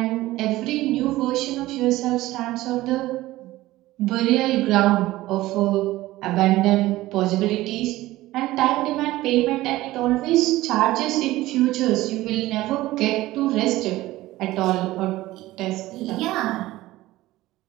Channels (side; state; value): left; quieter; 17.1 dB